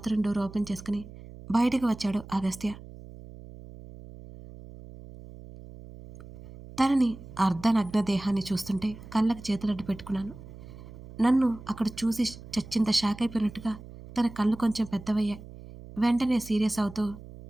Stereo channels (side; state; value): right; noise; hum, 16 dB below the sound